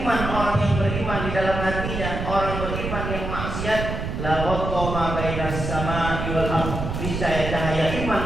orang yang beriman di dalam hatinya, orang beriman yang maksiat, la ghattama bainas samaa'i wal ardh. Cahaya iman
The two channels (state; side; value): noise; right; rumble, 4 dB below the sound